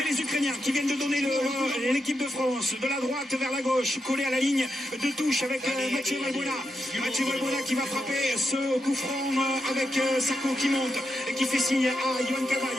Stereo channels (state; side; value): normal; both; correlation 0.85